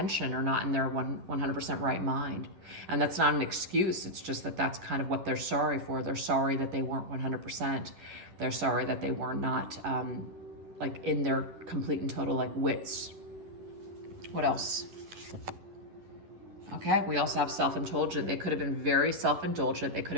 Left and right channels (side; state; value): left; late; 11 ms